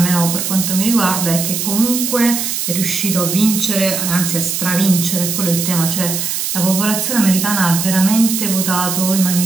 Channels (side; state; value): right; noise; hiss, 2 dB below the sound